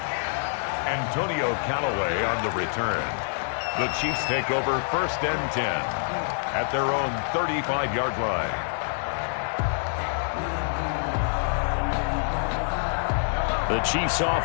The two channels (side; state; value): right; silent; digital silence